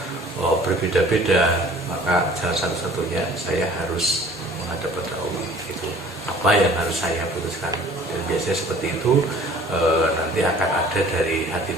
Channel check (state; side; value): normal; both; correlation 0.51